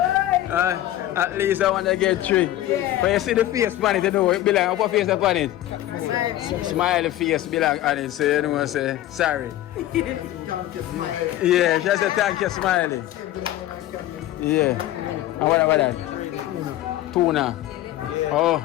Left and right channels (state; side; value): quieter; right; 14.1 dB